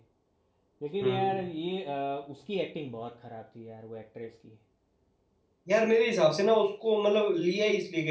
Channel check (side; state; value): both; identical; correlation 1.00